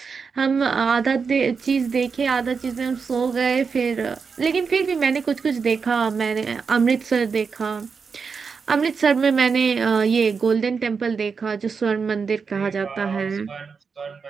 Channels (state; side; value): quieter; left; 5.5 dB